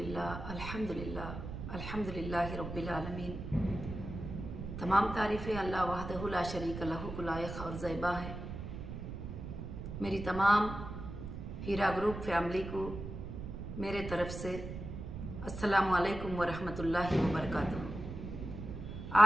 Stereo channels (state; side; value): noise; right; rumble, 8 dB below the sound